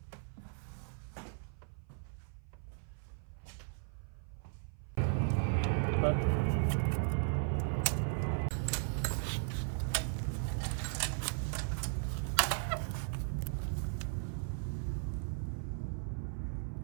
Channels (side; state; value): left; silent; 53 dB below the other